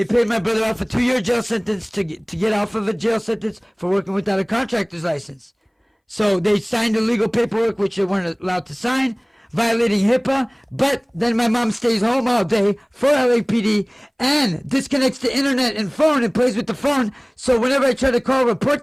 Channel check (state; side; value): identical; both; correlation 1.00